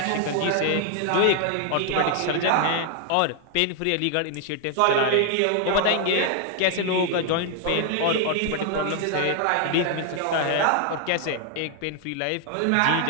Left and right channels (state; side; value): different; both; correlation 0.00